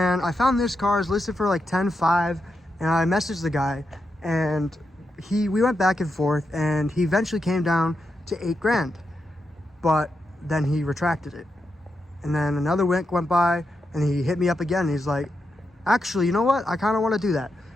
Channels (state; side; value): normal; both; correlation 0.86